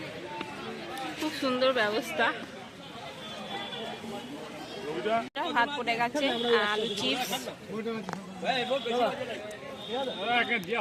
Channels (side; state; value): both; identical; correlation 1.00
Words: খুব সুন্দর ব্যবস্থা। ভাত পড়ে গেছে, আলু চিপস,